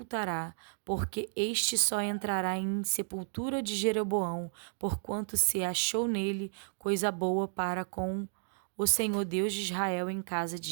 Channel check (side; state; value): left; silent; digital silence